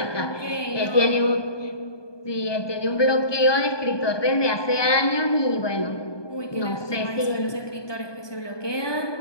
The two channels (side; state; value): right; late; 1.2 ms